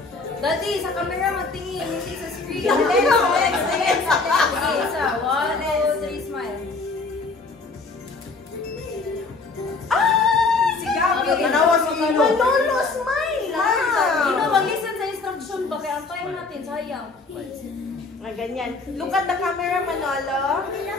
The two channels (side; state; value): right; quieter; 3.9 dB